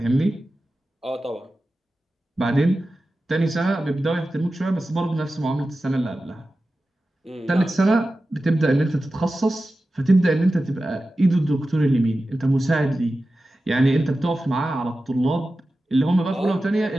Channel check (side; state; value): both; normal; correlation 0.94